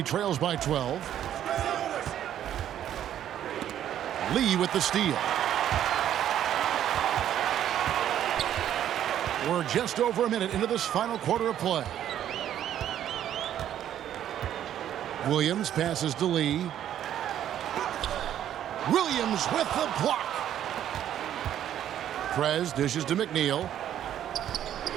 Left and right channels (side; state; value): left; quieter; 10.8 dB